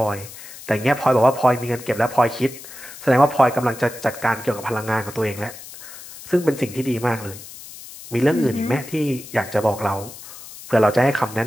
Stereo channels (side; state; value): left; noise; hiss, 15 dB below the sound